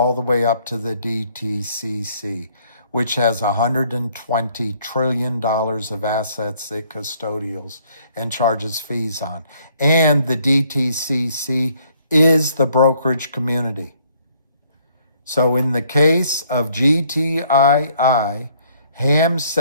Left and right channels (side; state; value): both; inverted; correlation -0.64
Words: the way up to the DTCC, which has $120 trillion of assets it custodials and charges fees on. And the DTCC is the brokerage community. So in the case of GTII, Ham